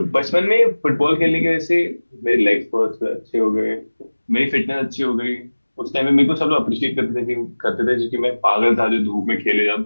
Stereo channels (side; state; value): both; inverted; correlation -1.00